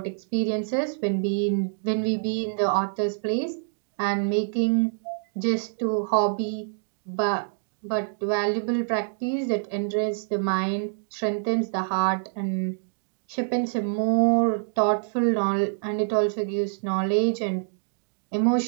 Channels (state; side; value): silent; left; digital silence